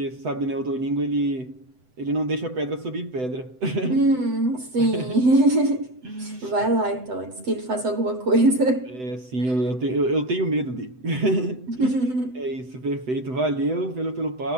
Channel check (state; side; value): late; left; 7.9 ms